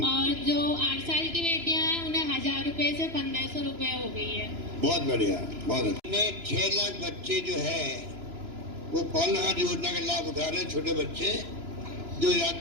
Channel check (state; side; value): late; left; 3.0 ms